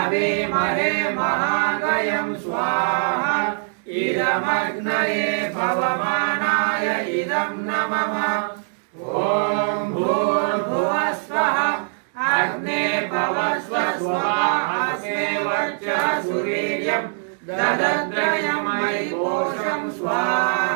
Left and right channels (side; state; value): left; silent; digital silence